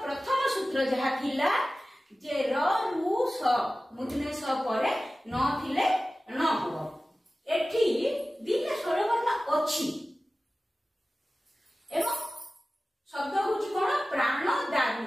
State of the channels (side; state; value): both; normal; correlation 0.96